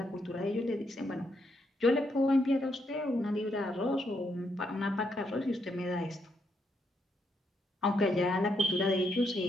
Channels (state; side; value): normal; both; correlation 0.77